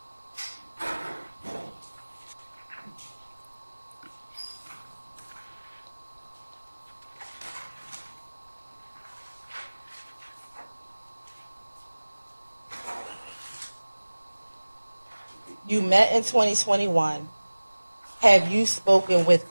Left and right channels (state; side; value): inverted; both; correlation -1.00